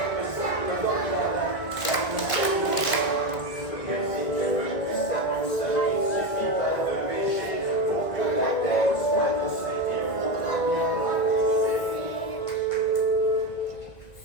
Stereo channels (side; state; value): right; late; 2.0 ms